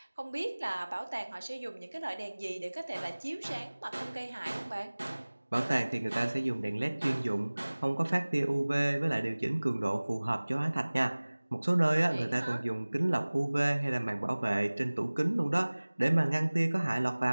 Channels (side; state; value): both; inverted; correlation -1.00